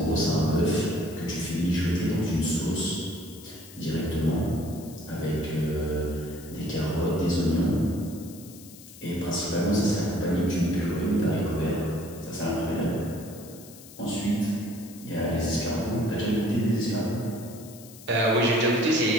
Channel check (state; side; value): noise; left; hiss, 19 dB below the sound